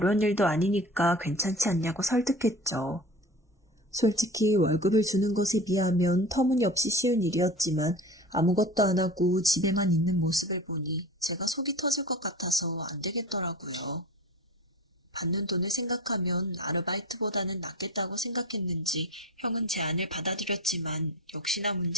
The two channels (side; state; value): both; normal; correlation 0.35